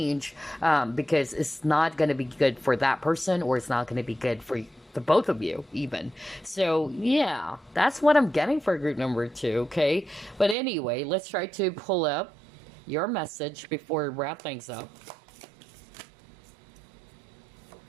because it's not going to be good for that person, or it's not going to be good for the both of you even. So yeah, that's what I'm getting for group number 2. Okay, but anyway, let's try to pull up your message before we wrap things up.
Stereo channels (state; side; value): drops out; left; at 10.6 s